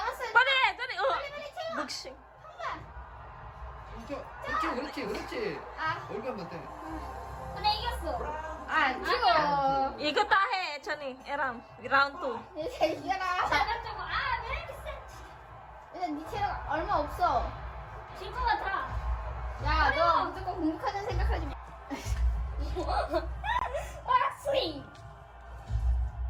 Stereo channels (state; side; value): identical; both; correlation 1.00